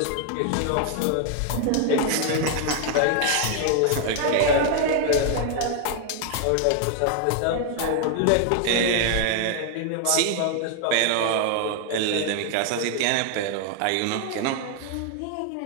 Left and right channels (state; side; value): different; both; correlation 0.00